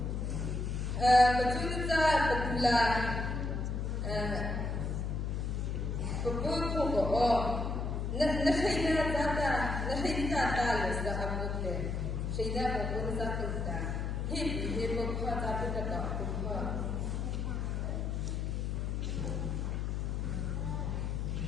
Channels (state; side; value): noise; left; hum, 1 dB below the sound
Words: Patulita Patula Papuko Nahina Tata Nahina Talis the Abuke Shida Papuza Kuta Hip Pata Pata